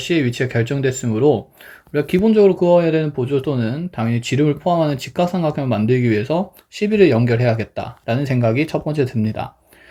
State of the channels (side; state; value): both; identical; correlation 1.00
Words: 위치가 결정됐으므로 우리가 기본적으로 그어야 되는 보조도는 당연히 지름을 포함하는 직각삼각형을 만들기 위해서 11을 연결해야겠다라는 생각이 첫 번째 듭니다.